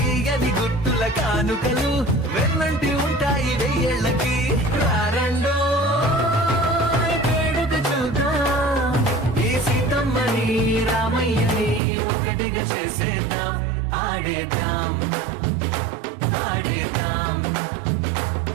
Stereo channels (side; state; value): left; drops out; at 11.8 s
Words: గుట్టుల కానుకలు వెన్నంటి ఉంటాయి వెయ్యేళ్ళకి. రారండో వేడుక చూద్దాం ఈ సీతమ్మని రామయ్యని ఒకటిగా చేసేద్దాం. ఆడేద్దాం ఆడేద్దాం